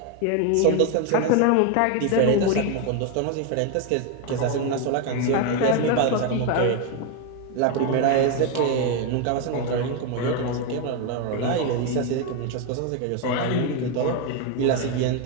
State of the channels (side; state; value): both; different; correlation 0.02